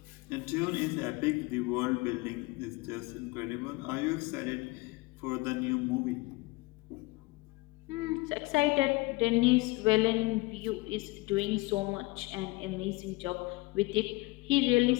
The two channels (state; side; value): quieter; right; 22.8 dB